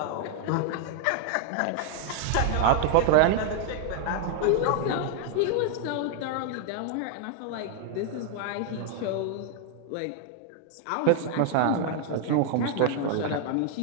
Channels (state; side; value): different; both; correlation 0.00